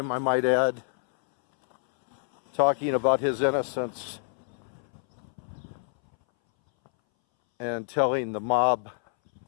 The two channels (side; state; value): right; silent; 60 dB below the other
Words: I might add, talking about his innocence and telling the mob